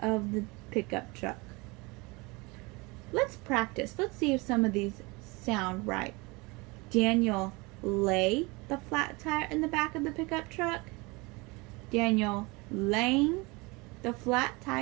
the pickup truck. Let's practice. Let's see if some of these sound right. Daniel lay the flat tire in the back of the pickup truck. Daniel laying the flat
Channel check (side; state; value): left; quieter; 25.8 dB